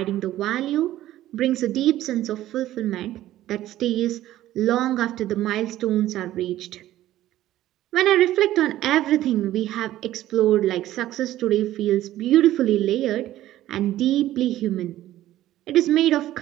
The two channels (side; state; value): left; quieter; 14.1 dB